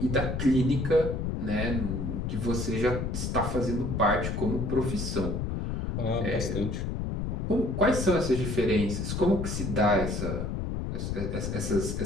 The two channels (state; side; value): noise; left; rumble, 2 dB below the sound